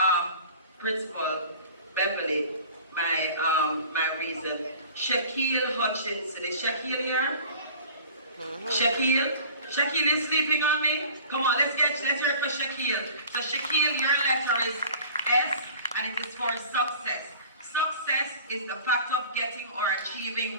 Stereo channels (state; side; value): inverted; both; correlation -0.44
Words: Principal Beverly my reason. Shaquille Hutchinson. Is Shaquille here? Shaquille is sleeping on me? Come on, let's hear it for Shaquille. So Shaquille, your letter is S, and it is for success. Success is the fact of getting or